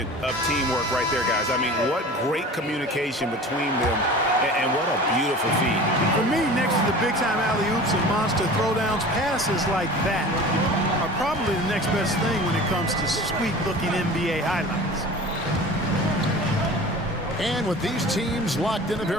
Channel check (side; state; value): both; normal; correlation 0.39